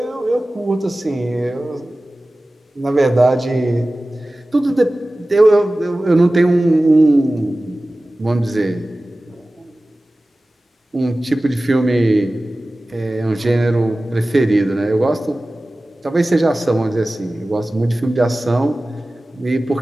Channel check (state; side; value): normal; both; correlation 0.97